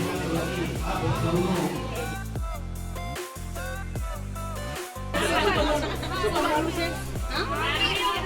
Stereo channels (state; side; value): identical; both; correlation 1.00